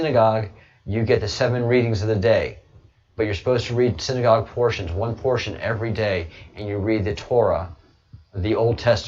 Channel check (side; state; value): both; identical; correlation 1.00